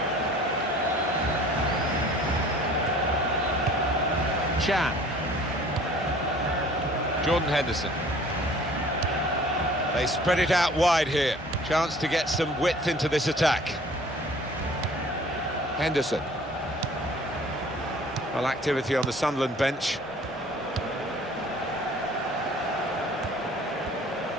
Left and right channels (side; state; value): both; normal; correlation 0.50